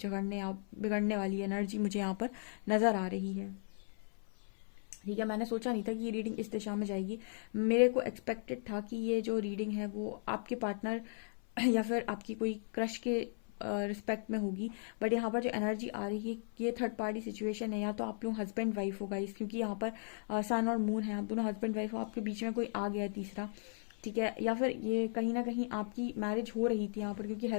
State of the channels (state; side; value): silent; right; 53 dB below the other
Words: या बिगड़ने वाली एनर्जी मुझे यहाँ पर नजर आ रही है। ठीक है, मैंने सोचा नहीं था कि ये रीडिंग इस दिशा में जाएगी। मेरे को एक्सपेक्टेड था कि ये जो रीडिंग है वो आपके पार्टनर या फिर आपकी कोई क्रश के रिस्पेक्ट में होगी, बट यहाँ पर जो एनर्जी आ रही है ये थर्ड पार्टी सिचुएशन है, या तो आप लोग हस्बैंड वाइफ हो गाइस, क्योंकि यहाँ पर सन और मून है, आप दोनों हस्बैंड वाइफ हो, आपके बीच में कोई आ गया है तीसरा। ठीक है, या फिर ये कहीं ना कहीं आपकी मैरिज हो रही थी यहाँ पर, क्योंकि